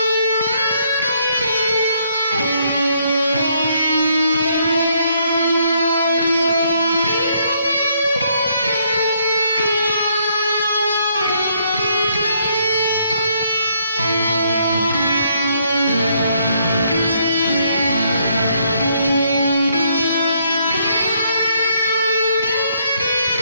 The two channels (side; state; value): both; inverted; correlation -0.71